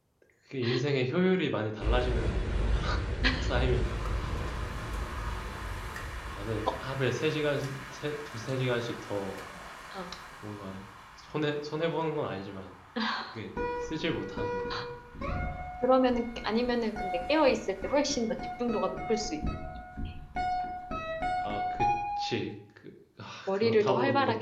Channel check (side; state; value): both; identical; correlation 1.00